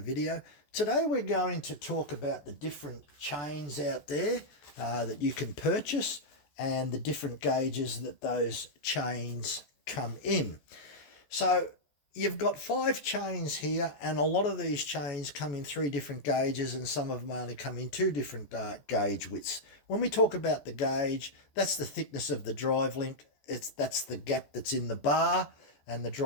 video. Today we're going to talk about the different chains out there that you can purchase and the different gauges that those chains come in. So you've got 5 chains here, and a lot of these chains come in 3 different gauges, and some of them only come in 2 different gauge widths. When we talk about the gauge, that's the thickness of the drive link. That's the gap that's in the bar, and the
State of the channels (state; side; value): late; right; 14 ms